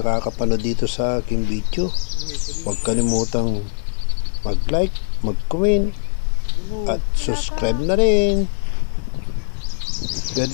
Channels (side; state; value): right; silent; digital silence